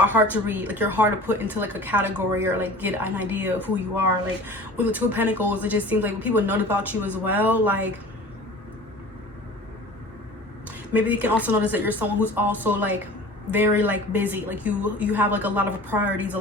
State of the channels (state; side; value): normal; both; correlation 0.41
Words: hard to read, like you're hard to put into like a category or like get an idea of who you are. Like with the Two of Pentacles, it just seems like when people know about you as well, like maybe you can also notice that you're someone who's also like very like busy, like you have like a lot of priorities, a